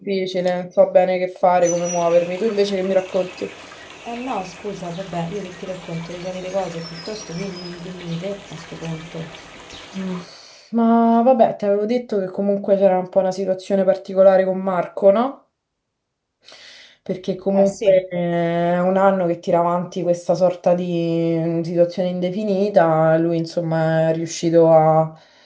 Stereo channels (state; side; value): identical; both; correlation 1.00